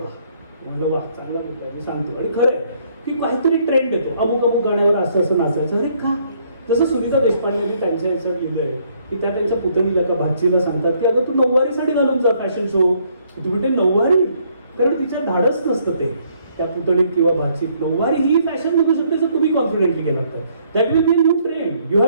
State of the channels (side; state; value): both; inverted; correlation -0.68